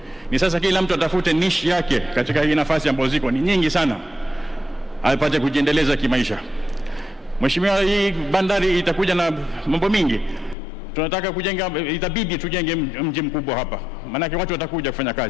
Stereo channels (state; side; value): drops out; right; at 10.6 s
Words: Ni sasa kila mtu atafute niche yake katika hii nafasi ambazo ziko ni nyingi sana, apate kujiendeleza kimaisha. Mheshimiwa, hii bandari itakuja na mambo mingi. Tunataka kujenga, itabidi tujenge mji mkubwa hapa, maana watu watakuja kufanya